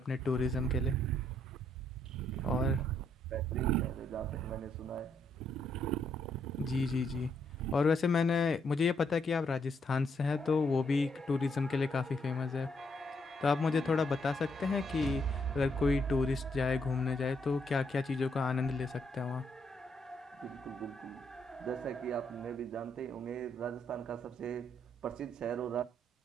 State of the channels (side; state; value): both; normal; correlation 0.74